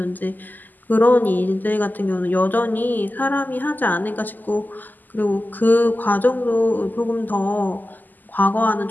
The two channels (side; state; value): right; late; 0.086 ms